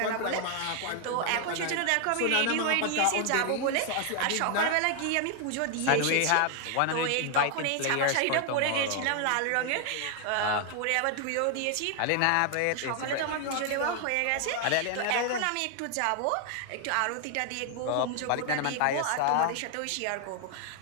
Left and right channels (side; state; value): both; different; correlation 0.00